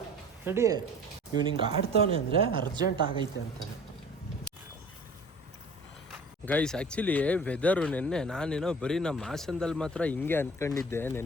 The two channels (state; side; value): normal; both; correlation 0.45